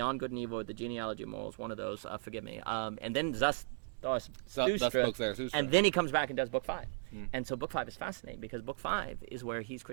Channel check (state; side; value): silent; left; digital silence